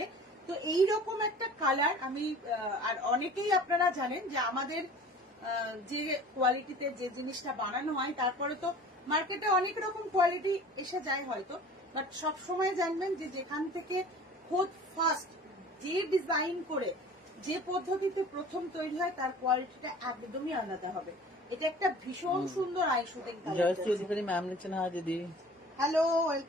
তো এইরকম একটা কালার আমি, আর অনেকেই আপনারা জানেন যে আমাদের যে কোয়ালিটিতে যে জিনিসটা বানানো হয়, তারপরে তো মার্কেটে অনেক রকম কোয়ালিটি এসে যায় হয়তো, বাট সব সময় জানবেন যে যেখান থেকে খোদ ফার্স্ট যে ডিজাইন করে যে পদ্ধতিতে প্রথম তৈরি হয় তার কোয়ালিটিটা একদমই আলাদা হবে। এটা একটা ভীষণ সুন্দর আই শুটিং কালার। ম্যাম লিখছেন হ্যাঁ দিদি, হ্যালো,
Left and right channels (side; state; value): both; normal; correlation 0.44